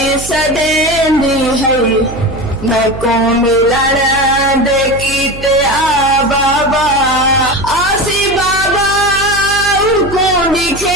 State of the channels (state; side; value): noise; right; hum, 12 dB below the sound